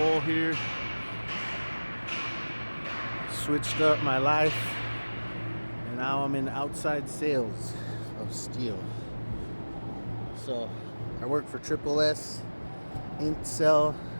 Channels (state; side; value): inverted; both; correlation -1.00